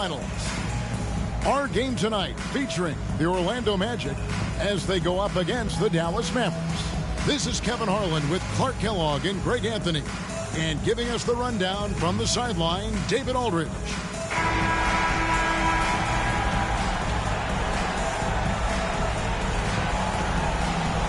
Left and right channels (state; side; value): identical; both; correlation 1.00